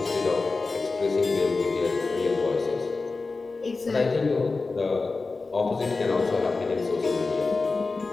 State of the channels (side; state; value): right; quieter; 3.9 dB